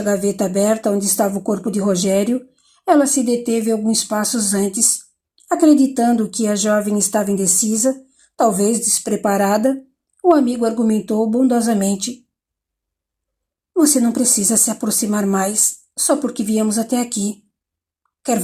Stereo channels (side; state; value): both; identical; correlation 1.00